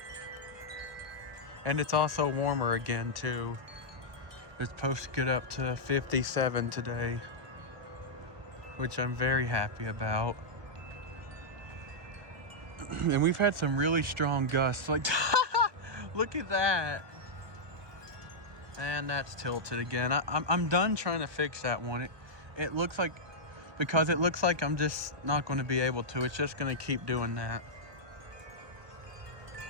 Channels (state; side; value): late; left; 1.5 ms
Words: And it's also warmer again too. It's supposed to get up to 57 today, which I'm very happy about. And we've had some really strong gusts, like look at that. And that's tilted again. I'm done trying to fix that one. It looks like, because it looks like I'm just not going to be able to. It's just going to keep doing that.